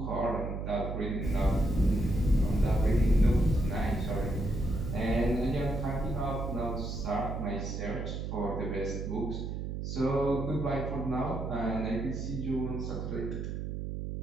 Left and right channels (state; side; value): noise; right; hum, 4 dB below the sound